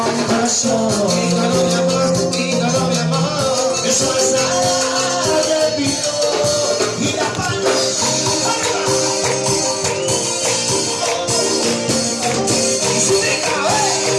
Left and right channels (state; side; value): identical; both; correlation 1.00